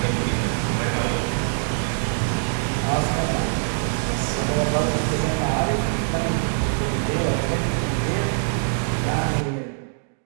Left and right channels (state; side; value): silent; left; digital silence